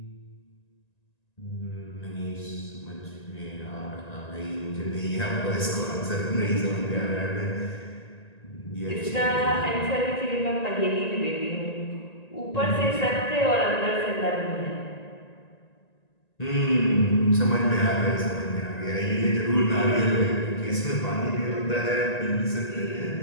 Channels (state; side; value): late; right; 1.9 ms